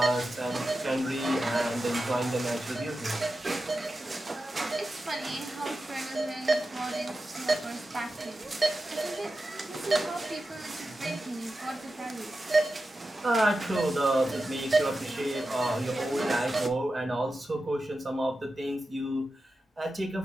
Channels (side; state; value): both; normal; correlation 0.92